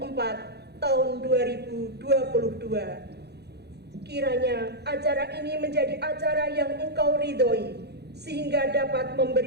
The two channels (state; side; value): late; left; 0.48 ms